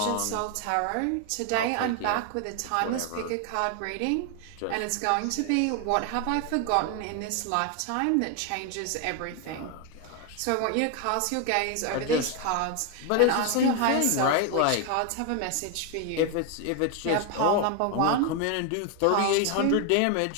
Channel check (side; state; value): both; different; correlation 0.01